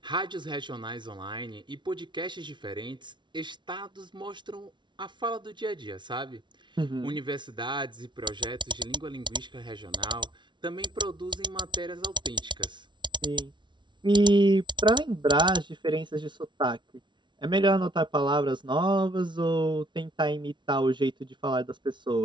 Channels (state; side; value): late; left; 0.23 ms